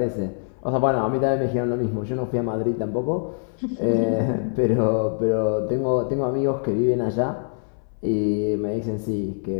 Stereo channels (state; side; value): silent; right; 63 dB below the other